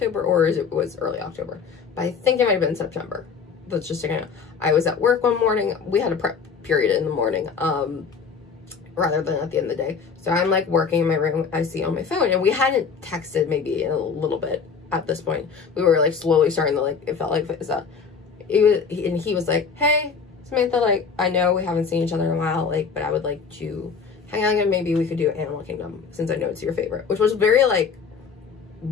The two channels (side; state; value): right; quieter; 5.7 dB